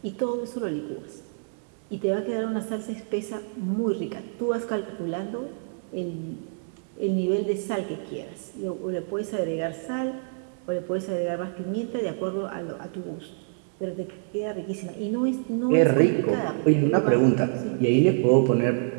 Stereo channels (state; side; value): silent; left; 60 dB below the other